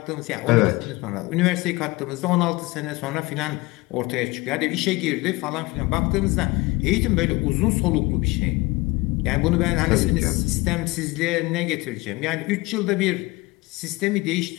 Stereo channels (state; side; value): quieter; right; 22.3 dB